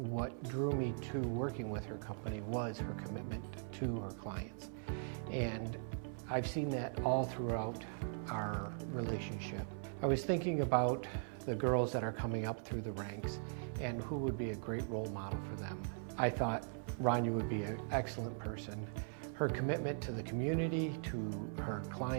drew me to working with her company was her commitment to her clients. And I've seen that all throughout our relationship. I was thinking about the girls that are coming up through the ranks and who would be a great role model for them. I thought Rania would be an excellent person. Her commitment to the community, to her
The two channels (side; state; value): left; silent; 51 dB below the other